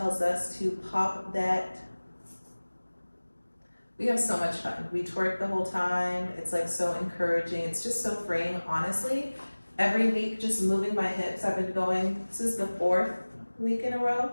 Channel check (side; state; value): both; inverted; correlation -1.00